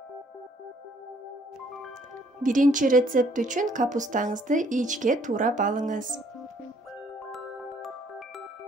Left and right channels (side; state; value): both; normal; correlation 0.64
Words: Биринчи рецепт үчүн капустаңызды ичке туурап алыңыз.